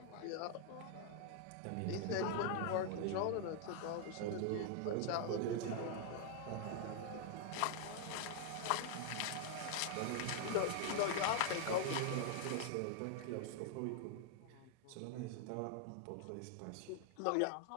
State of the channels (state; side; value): different; both; correlation 0.00